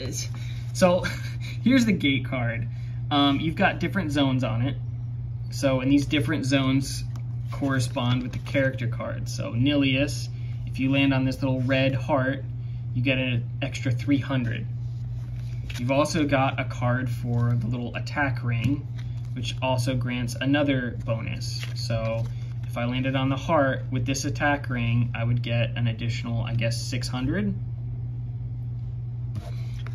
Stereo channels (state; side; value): identical; both; correlation 1.00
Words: so here's the gate card. You've got different zones on it. So, and these different zones correspond with the character cards. So Nilius, if you land on this little red heart, you get an extra 300. You've also got a card for the little attack ring, which also grants another bonus. So if I landed on the heart with this attack ring, I would get an additional, I guess, 600.